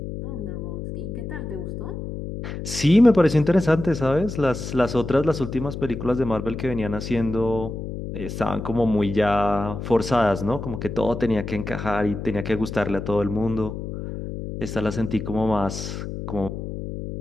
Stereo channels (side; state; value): left; noise; hum, 7 dB below the sound